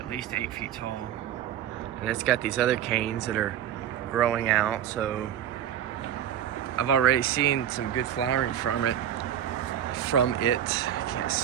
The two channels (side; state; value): left; quieter; 10.4 dB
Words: least 8 feet tall, and it's got these other canes that are growing out. So I've already seen some good flowering from it. I can't